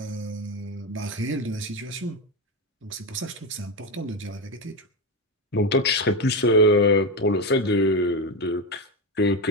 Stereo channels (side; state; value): both; normal; correlation 0.13